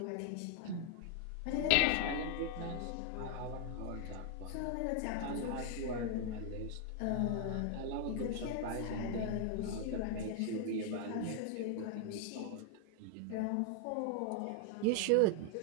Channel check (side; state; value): both; different; correlation 0.00